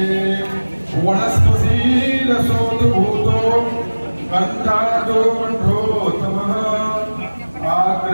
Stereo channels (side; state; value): both; inverted; correlation -1.00